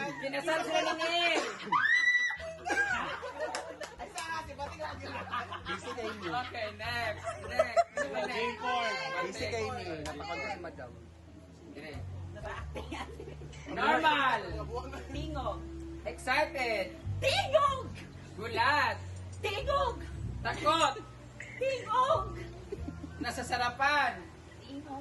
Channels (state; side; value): identical; both; correlation 1.00